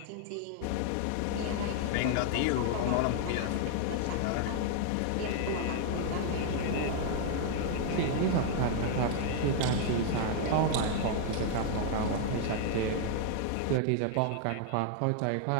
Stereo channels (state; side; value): different; both; correlation 0.00